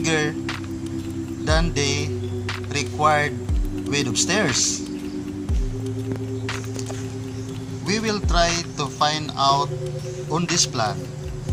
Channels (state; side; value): identical; both; correlation 1.00